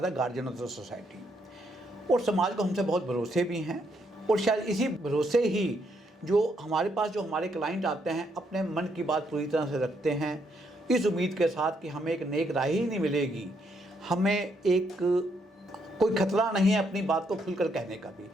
the guardian of the society और समाज को हमसे बहुत भरोसे भी हैं और शायद इसी भरोसे ही जो हमारे क्लाइंट आते हैं अपने मन की बात पूरी तरह से रखते हैं, इस उम्मीद के साथ कि हमें एक नेक राह ही नहीं मिलेगी, हमें एक कोई खतरा नहीं है अपनी बात को खुलकर कहने का भी,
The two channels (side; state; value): both; normal; correlation 0.75